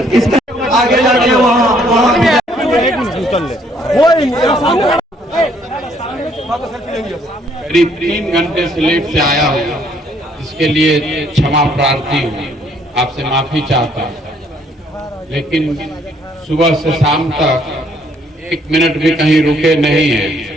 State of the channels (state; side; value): normal; both; correlation 0.66